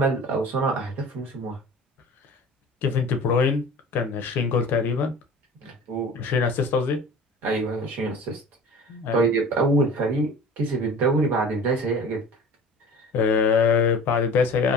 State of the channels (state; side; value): normal; both; correlation 0.41